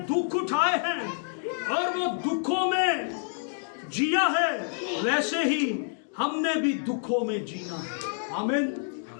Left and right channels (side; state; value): right; silent; digital silence